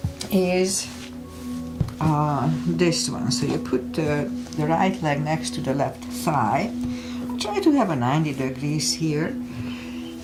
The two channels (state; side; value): identical; both; correlation 1.00